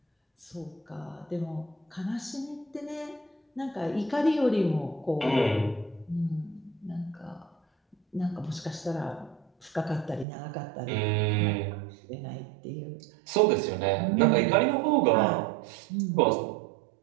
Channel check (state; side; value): drops out; left; at 10.2 s